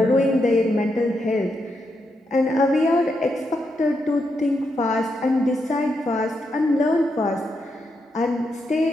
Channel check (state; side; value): normal; both; correlation 0.82